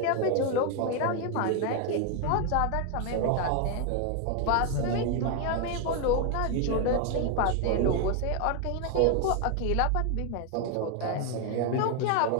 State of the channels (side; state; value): both; different; correlation 0.01